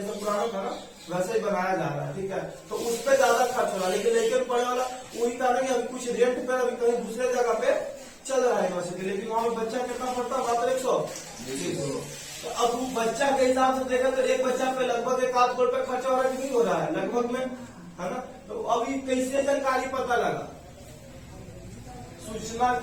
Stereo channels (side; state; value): both; identical; correlation 1.00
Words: पुराना था ना वैसे ही बनाया जा रहा है, ठीक है। तो उस पर ज्यादा खर्च हो रहा है, लेकिन लेकर पढ़ने वाला वही था ना कि अभी कुछ रेंट पे अभी कहीं दूसरे जगह पे चल रहा है यूनिवर्सिटी, लेकिन वहाँ पे बच्चा कितना पढ़ता है, मात्र 100। तो अब वो बच्चा के हिसाब से देखा तो एक बच्चा पे लगभग 1 करोड़ रुपए खर्चा हो रहा है कि नहीं हो रहा है, लगभग में, है ना। तो अभी कैसे जानकारी पता लगा, सूचना